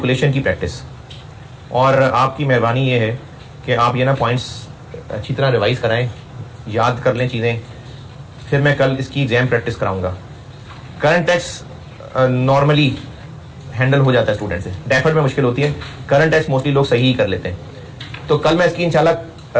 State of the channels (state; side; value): identical; both; correlation 1.00